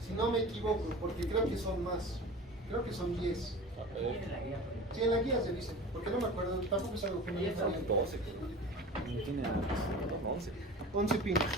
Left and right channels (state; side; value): normal; both; correlation 0.36